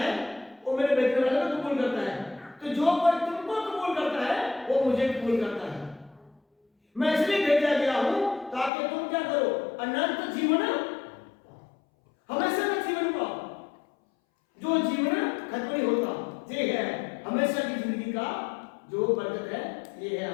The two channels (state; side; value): drops out; right; at 8.7 s